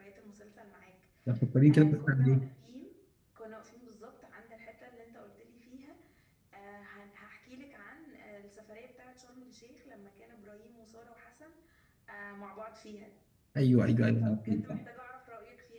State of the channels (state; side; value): identical; both; correlation 1.00